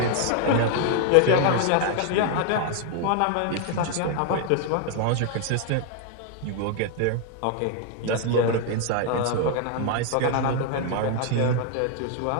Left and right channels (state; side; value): different; both; correlation 0.01